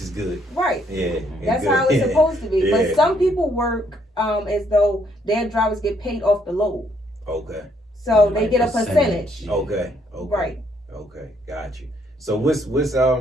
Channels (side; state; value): both; normal; correlation 0.70